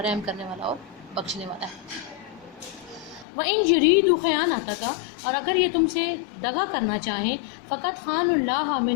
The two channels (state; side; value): drops out; right; at 3.2 s